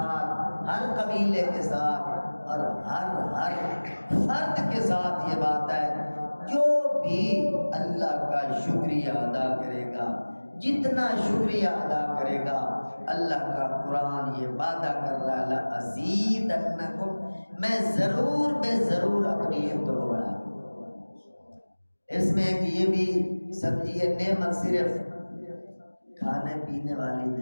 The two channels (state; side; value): inverted; both; correlation -1.00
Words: ہر قبیلے کے ساتھ اور ہر فرد کے ساتھ یہ بات ہے. جو بھی اللہ کا شکریہ ادا کرے گا، جتنا شکریہ ادا کرے گا، اللہ کا قرآن یہ وعدہ کر رہا ہے لَأَزِيدَنَّكُمْ، میں ضرور بے ضرور اپنی نعمتوں کو بڑھا دوں. اس میں ایک یہ بھی سمجھیے نعمت صرف کھانے پینے والی